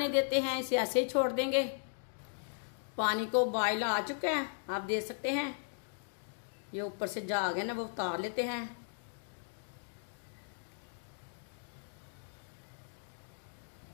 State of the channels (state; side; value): silent; right; digital silence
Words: देते हैं, इसे ऐसे ही छोड़ देंगे। पानी को उबाल आ चुका है, आप देख सकते हैं। ये ऊपर से झाग है ना, वो उतार लेते हैं।